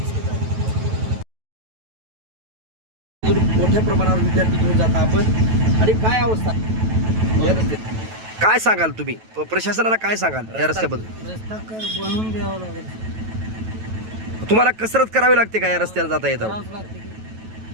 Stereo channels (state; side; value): late; left; 9.2 ms